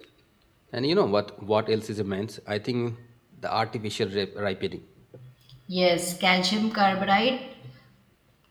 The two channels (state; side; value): identical; both; correlation 1.00